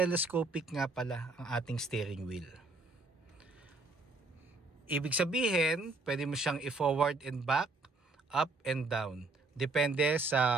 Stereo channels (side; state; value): left; quieter; 3.2 dB